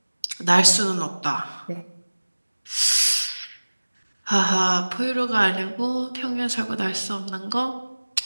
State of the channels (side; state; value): both; inverted; correlation -1.00